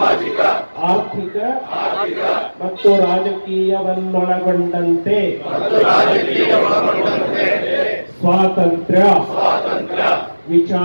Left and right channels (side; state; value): both; inverted; correlation -1.00